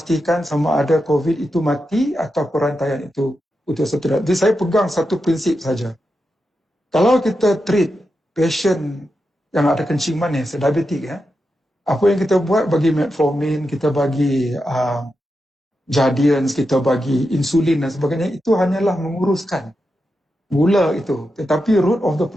sama ada COVID itu mati atau perantaian itu putus atau tidak. Jadi saya pegang satu prinsip saja. Kalau kita treat patient yang ada kencing manis, diabetik, apa yang kita buat bagi metformin, kita bagi Jardiance, kita bagi insulin dan sebagainya, itu hanyalah menguruskan gula itu. Tetapi root of the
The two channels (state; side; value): normal; both; correlation 0.88